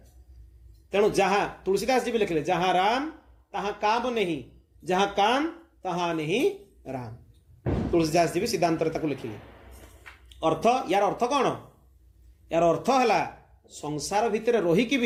तेणु जहाँ तुलसीदास जी भी लिखले जहाँ राम तहाँ काम नहीं जहाँ काम तहाँ नहीं राम तुलसीदास जी भी सिद्धांत लिखिले। अर्थ यार अर्थ कौन यार अर्थ है संसार भितर रहीकि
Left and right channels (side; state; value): both; identical; correlation 1.00